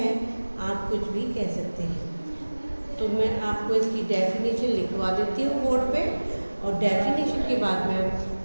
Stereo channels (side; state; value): both; inverted; correlation -1.00